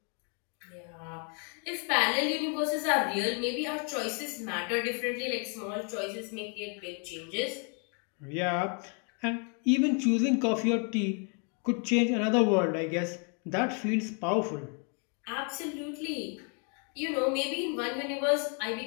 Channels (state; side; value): quieter; right; 38.8 dB